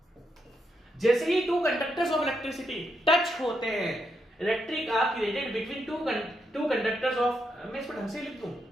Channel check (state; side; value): normal; both; correlation 0.81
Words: जैसे ही two conductors of electricity touch होते हैं, electric arc created between two conductors of, मैं इसको ढंग से लिख दूं